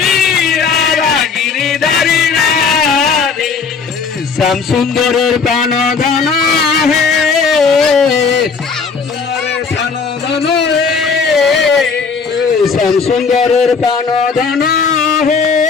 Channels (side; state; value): right; quieter; 5.3 dB